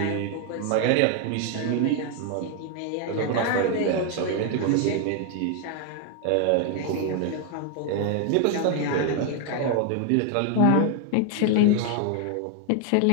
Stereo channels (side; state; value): both; different; correlation 0.00